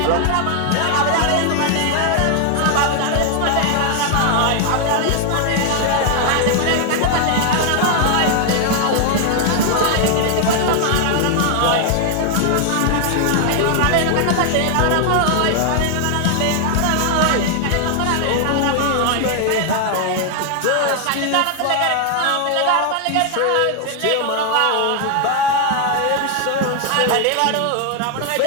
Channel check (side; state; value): both; different; correlation 0.00